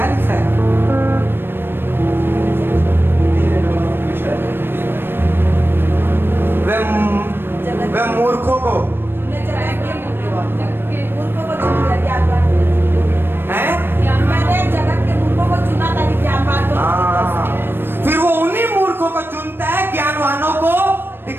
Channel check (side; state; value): left; late; 0.10 ms